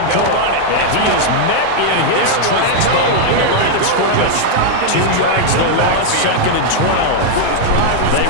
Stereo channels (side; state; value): both; different; correlation 0.00